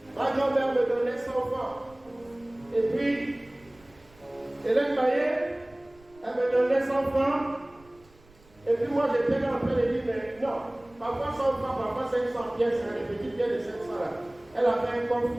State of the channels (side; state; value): right; noise; rumble, 28 dB below the sound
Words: Ma grand-mère me donnait 100 francs. Et puis, Hélène Maillet, elle me donnait 100 francs. Et puis moi, j'étais là en train de dire, mais non, parfois 100 francs, parfois 500 pièces, les petites pièces de 500 là. Elle avait un coffre